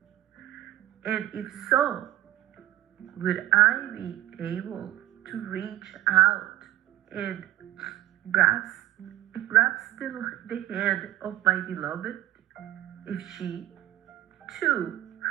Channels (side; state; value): left; quieter; 14.7 dB